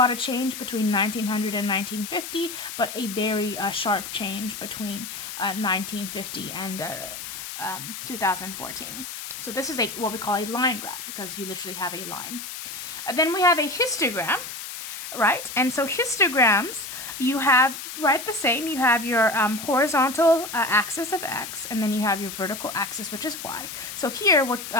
of change between 1900 and 1950, but a very sharp change between 1950 and 2014. So this is what we call a line graph because you literally have a line. Then we have a histogram, right? And so histograms, you have the same. You have your horizontal axis of x, and then you have your vertical axis, which is y. So here,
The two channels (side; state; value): left; noise; hiss, 9 dB below the sound